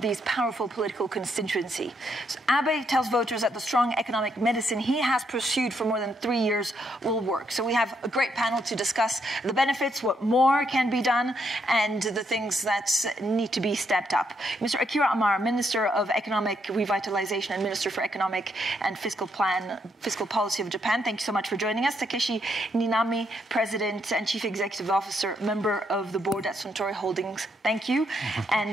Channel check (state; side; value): normal; both; correlation 0.76